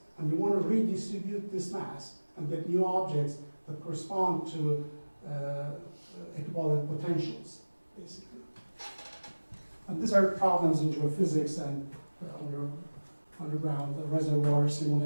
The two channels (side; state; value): both; inverted; correlation -1.00